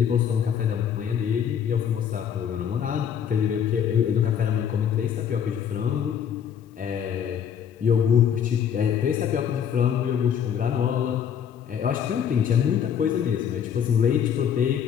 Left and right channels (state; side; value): quieter; right; 8.4 dB